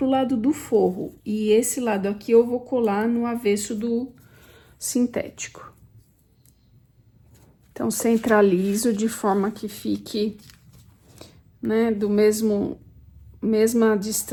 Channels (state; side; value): identical; both; correlation 1.00